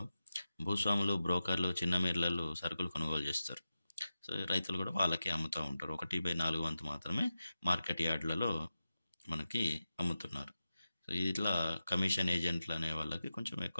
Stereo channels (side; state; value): both; inverted; correlation -0.92